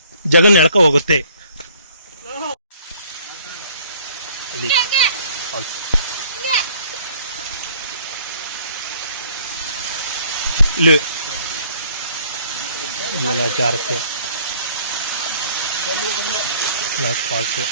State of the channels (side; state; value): both; inverted; correlation -0.57